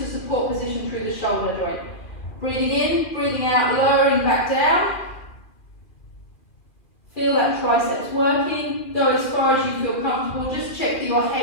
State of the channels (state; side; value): late; right; 2.4 ms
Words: a support position through the shoulder joint. Breathing in, breathing out, lowering back down. Feel that triceps working. Go as far as you feel comfortable. Just check that your